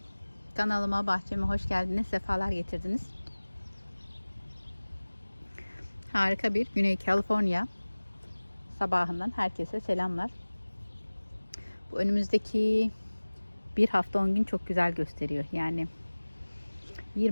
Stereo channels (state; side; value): inverted; both; correlation -1.00